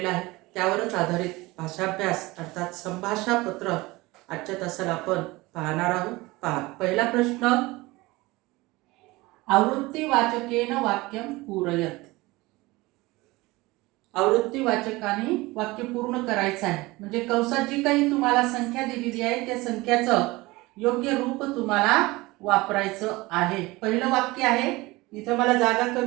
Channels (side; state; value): left; quieter; 21.3 dB